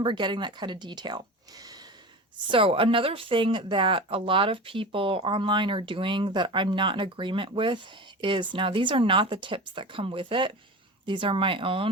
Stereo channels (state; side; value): normal; both; correlation 0.30